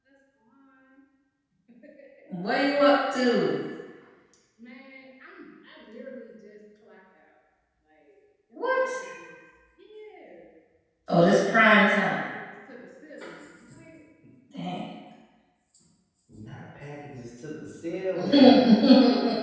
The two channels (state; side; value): identical; both; correlation 1.00